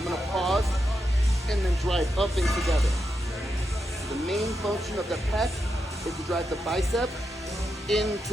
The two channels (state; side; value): normal; both; correlation 0.85